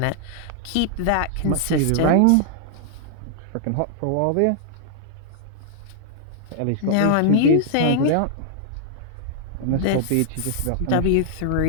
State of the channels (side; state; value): both; different; correlation -0.01